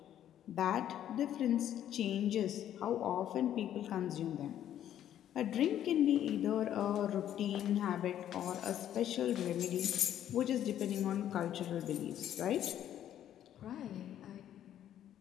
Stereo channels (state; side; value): quieter; right; 11.0 dB